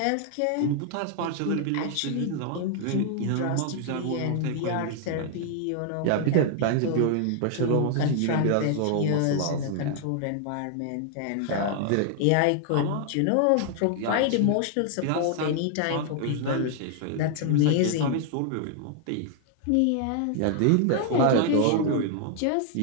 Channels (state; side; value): different; both; correlation 0.00